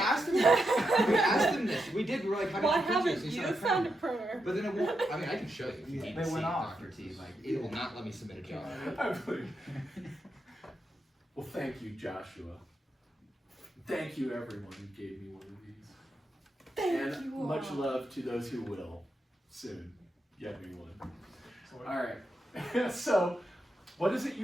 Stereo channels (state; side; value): normal; both; correlation 0.84